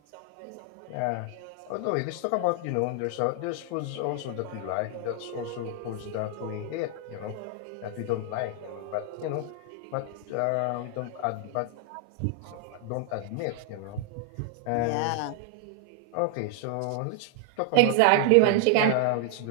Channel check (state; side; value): different; both; correlation 0.00